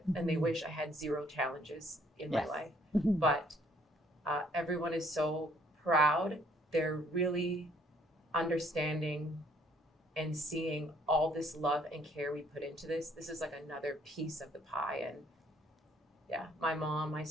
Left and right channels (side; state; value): both; normal; correlation 0.63